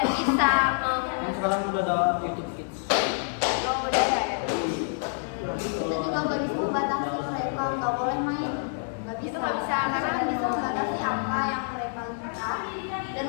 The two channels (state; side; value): silent; right; digital silence